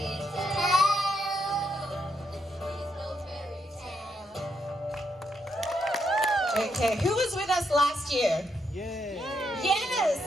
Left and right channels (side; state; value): both; normal; correlation 0.79